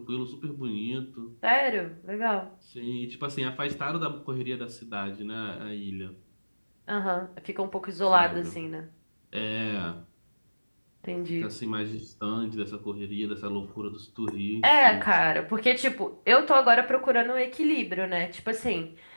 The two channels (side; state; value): both; inverted; correlation -1.00